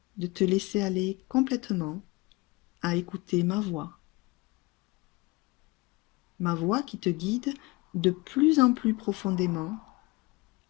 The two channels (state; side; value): quieter; right; 23.7 dB